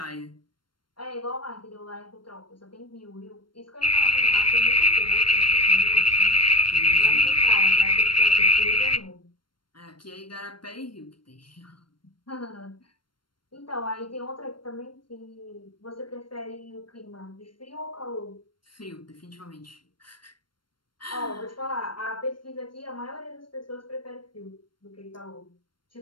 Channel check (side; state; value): right; late; 0.72 ms